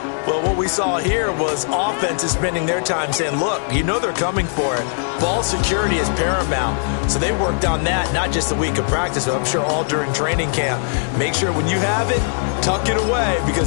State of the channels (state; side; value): silent; right; digital silence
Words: Well, what we saw here was offenses spending their time saying, look, you know they're coming for it. Ball security is paramount. So they worked on that not just a week of practice, but I'm sure all during training camp. Make sure when you have it, tuck it away